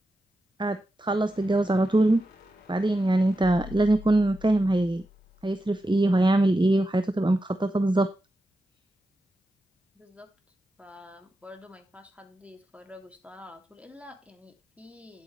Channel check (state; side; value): normal; both; correlation 0.89